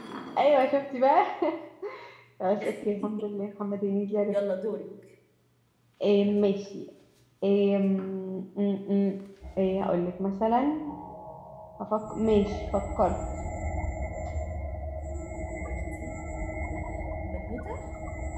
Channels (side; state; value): both; identical; correlation 1.00